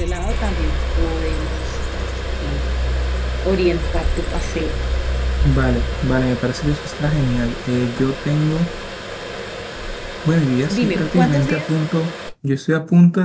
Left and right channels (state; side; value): identical; both; correlation 1.00